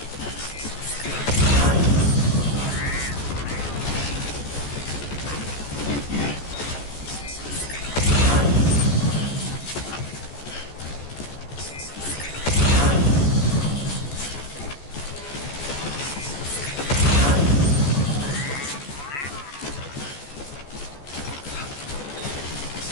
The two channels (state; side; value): late; right; 14 ms